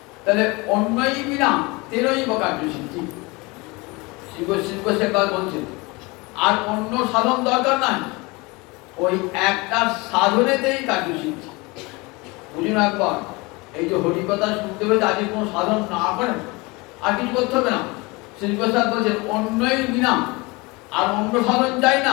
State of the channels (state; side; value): quieter; right; 25.1 dB